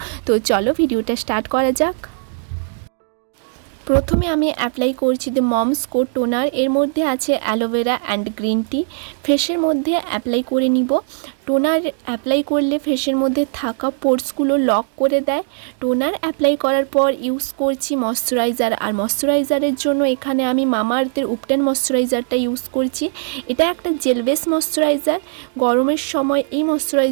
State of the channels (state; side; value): silent; left; digital silence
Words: তো চলো ভিডিওটা স্টার্ট করা যাক। প্রথমে আমি অ্যাপ্লাই করছি দ্য মমস কোড টোনার। এর মধ্যে আছে অ্যালোভেরা অ্যান্ড গ্রিন টি। ফেসের মধ্যে অ্যাপ্লাই করে নিব। টোনার অ্যাপ্লাই করলে ফেসের মধ্যে থাকা পোর্সগুলো লক করে দেয়। টোনার অ্যাপ্লাই করার পর ইউজ করছি ময়শ্চারাইজার। আর ময়শ্চারাইজারের জন্য এখানে আমি মামা আর্থের উপটেন ময়শ্চারাইজারটা ইউজ করছি। এটা একটা জেল বেস ময়শ্চারাইজার। গরমের সময় এই